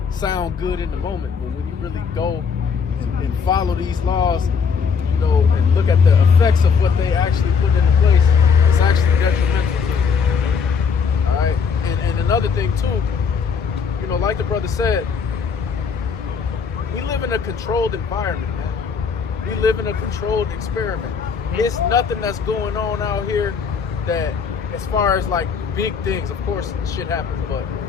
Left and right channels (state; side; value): quieter; right; 6.0 dB